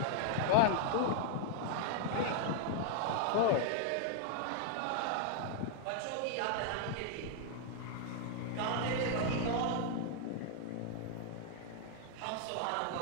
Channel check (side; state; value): both; different; correlation 0.00